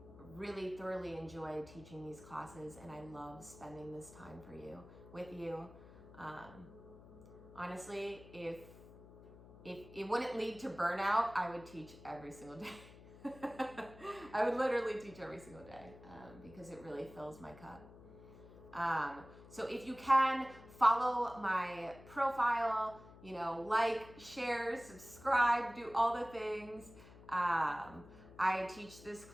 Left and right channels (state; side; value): noise; left; hum, 19 dB below the sound